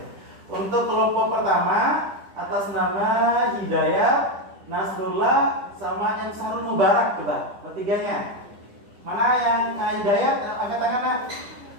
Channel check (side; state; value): left; late; 10 ms